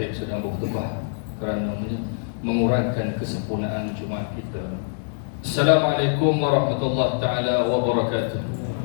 sedang berkhutbah kerana mengurangkan kesempurnaan Jumaat kita. Assalamualaikum warahmatullahi taala wabarakatuh.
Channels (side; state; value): right; silent; digital silence